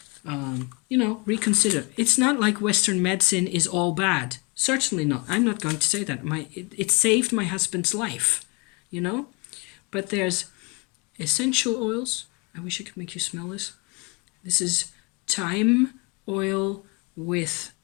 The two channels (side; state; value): right; quieter; 29.1 dB